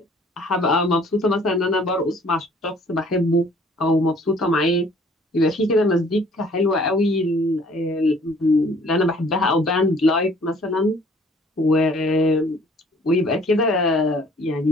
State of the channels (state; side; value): normal; both; correlation 0.56